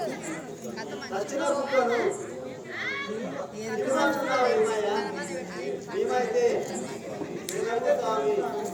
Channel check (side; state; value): both; identical; correlation 1.00